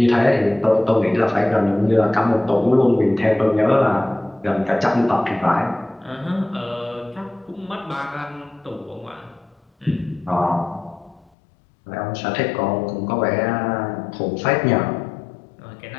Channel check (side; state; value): right; drops out; at 11.3 s